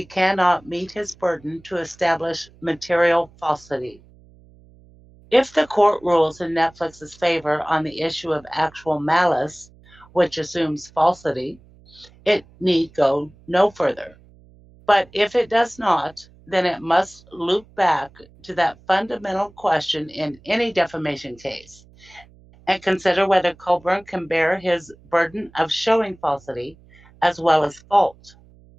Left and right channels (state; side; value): noise; right; hum, 26 dB below the sound